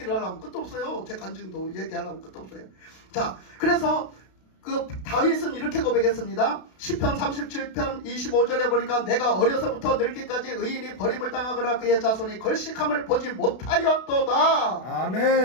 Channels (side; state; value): right; late; 32 ms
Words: 하려면 끝도 없어요. 제 간증도 얘기하려면 끝도 없어요. 자, 그래서 그 다윗은 이렇게 고백했습니다. 시편 37편 25절에 보니까 내가 어려서부터 늙기까지 의인이 버림을 당하거나 그의 자손이 걸식함을 보지 못하였도다.